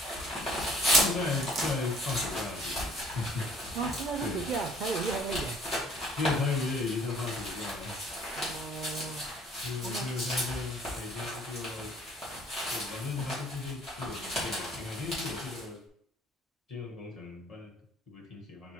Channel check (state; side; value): normal; both; correlation 0.55